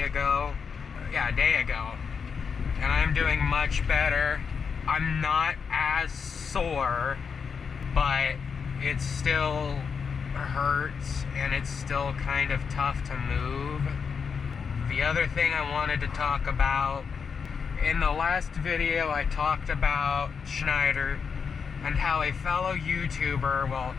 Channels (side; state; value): right; quieter; 6.0 dB